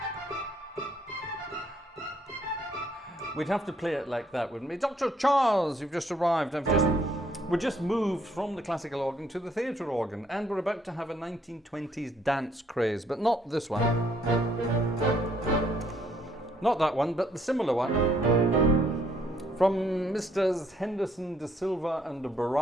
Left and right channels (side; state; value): both; normal; correlation 0.67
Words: We'd have to play it like that, wouldn't we? Dr. Charles, you've just arrived. We're just moved from the classical organ to the theatre organ, and we're about to have a 1920s dance craze, but not this one. Not that one, but the similar one. From Mr. Henderson, De Silva and